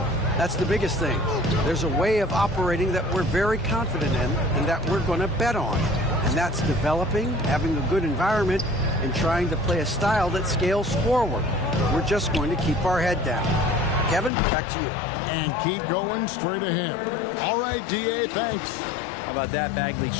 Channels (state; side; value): drops out; right; at 14.3 s